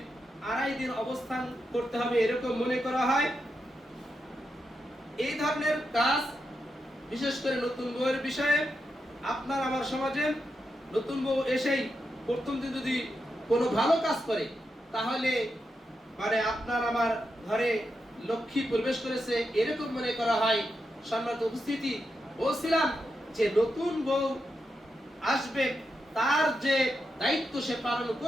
2.5 দিন অবস্থান করতে হবে এরকম মনে করা হয়। এই ধরনের কাজ বিশেষ করে নতুন বউয়ের বিষয়ে আপনার আমার সমাজে নতুন বউ এসেই প্রথম দিন যদি কোনো ভালো কাজ করে তাহলে মানে আপনার আমার ঘরে লক্ষ্মী প্রবেশ করেছে এরকম মনে করা হয়। সম্মানিত উপস্থিতি, বলছিলাম যে নতুন বউ আসবে তার যে দায়িত্ব সে পালন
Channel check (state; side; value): normal; both; correlation 0.86